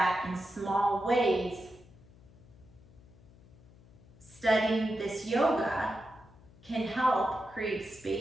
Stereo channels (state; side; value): noise; left; hum, 24 dB below the sound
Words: in small ways, studying this yoga can help create